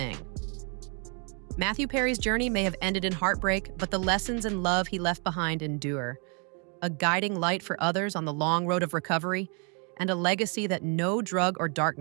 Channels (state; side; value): quieter; left; 36.9 dB